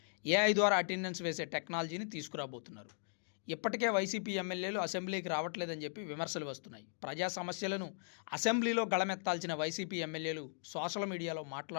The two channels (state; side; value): silent; right; digital silence